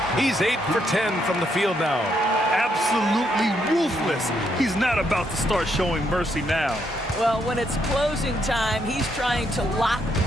He's 8 for 10 from the field now. Absolutely ruthless. He's not about to start showing mercy now. Well, when it's closing time, he's trying to lock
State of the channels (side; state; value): both; normal; correlation 0.75